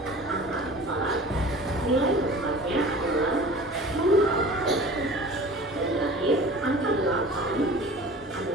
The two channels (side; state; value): both; normal; correlation 0.41